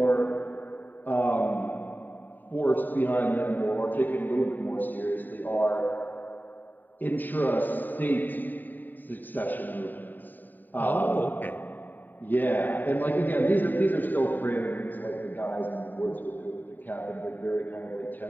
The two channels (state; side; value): late; right; 0.089 ms